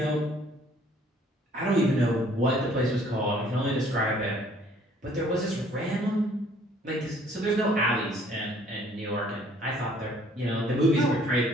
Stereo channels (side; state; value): both; normal; correlation 0.59